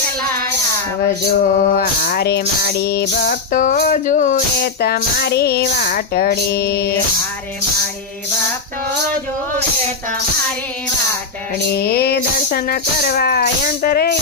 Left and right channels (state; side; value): quieter; right; 4.3 dB